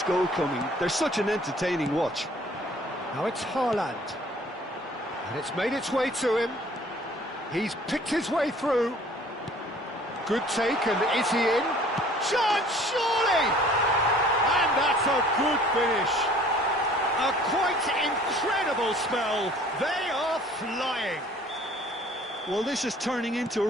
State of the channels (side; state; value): both; normal; correlation 0.53